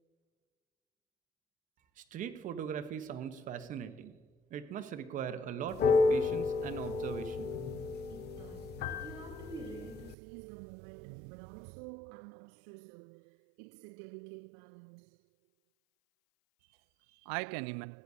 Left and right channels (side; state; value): left; drops out; at 10.2 s